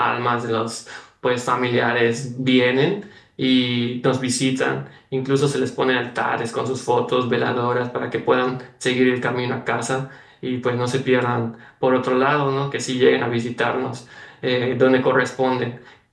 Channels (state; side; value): identical; both; correlation 1.00